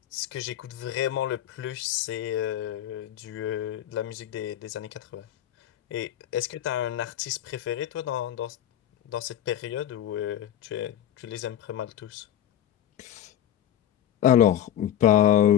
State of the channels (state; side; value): quieter; right; 11.0 dB